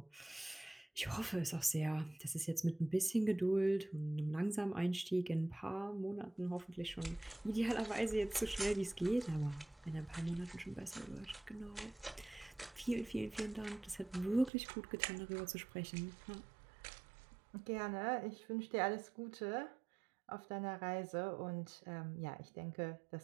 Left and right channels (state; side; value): drops out; left; at 14.5 s